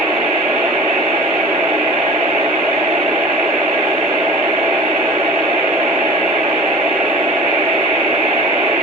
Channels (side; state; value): both; normal; correlation 0.41